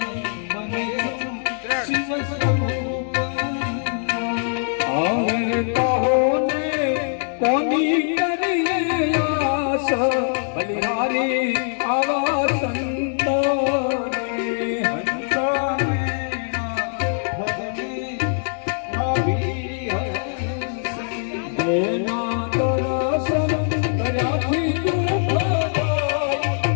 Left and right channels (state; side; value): silent; right; digital silence